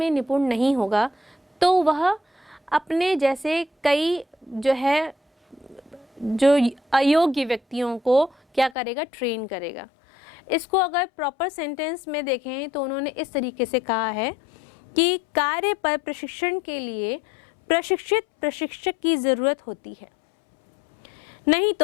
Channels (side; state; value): right; drops out; at 8.8 s